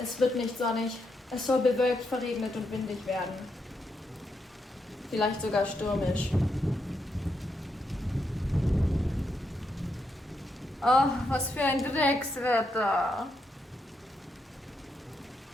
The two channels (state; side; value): normal; both; correlation 0.81